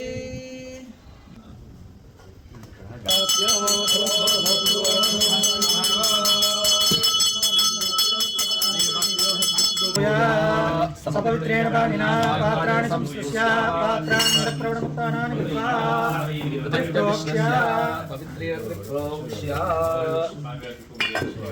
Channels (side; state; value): both; identical; correlation 1.00